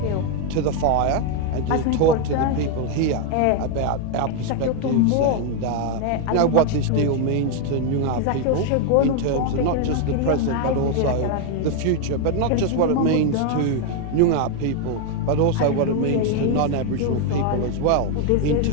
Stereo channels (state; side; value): different; both; correlation 0.01